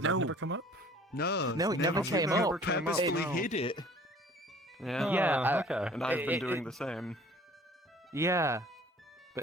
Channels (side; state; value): both; normal; correlation 0.51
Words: that No. never come up? No, it never came up. We purposefully hid it. Yeah. Okay. And I've been doing the same. Yeah.